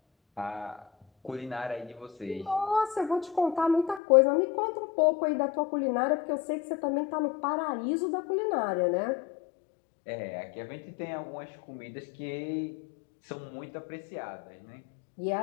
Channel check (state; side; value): drops out; right; at 4.0 s